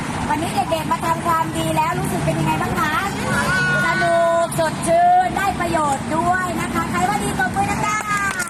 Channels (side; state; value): both; identical; correlation 1.00